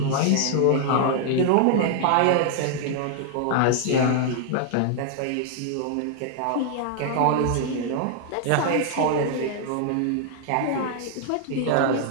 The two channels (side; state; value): both; different; correlation 0.00